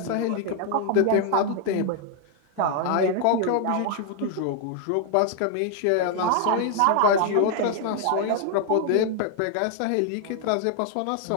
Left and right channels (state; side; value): different; both; correlation 0.00